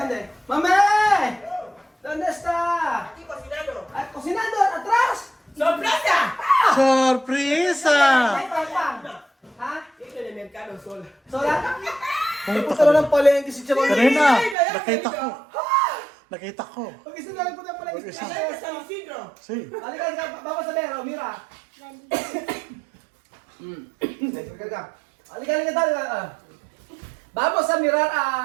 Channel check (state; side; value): drops out; left; at 14.6 s